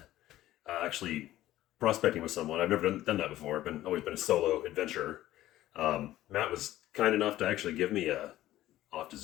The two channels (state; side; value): quieter; right; 14.6 dB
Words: actually prospecting with someone. I've never done that before. Always been a solo adventurer. Matt was kind enough to actually give me a. I'll have to